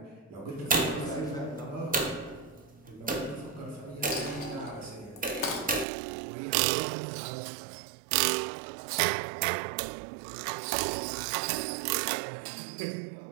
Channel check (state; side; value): drops out; left; at 5.9 s